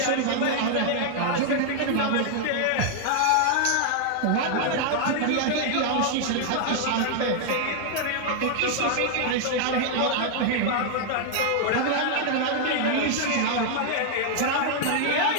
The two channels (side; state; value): both; different; correlation 0.00